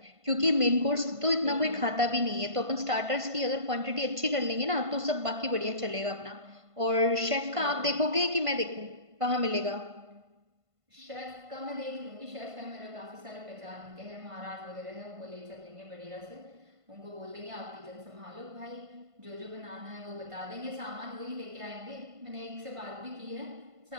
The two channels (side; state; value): left; late; 1.5 ms